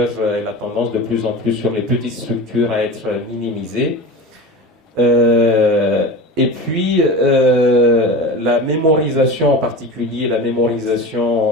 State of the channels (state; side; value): normal; both; correlation 0.30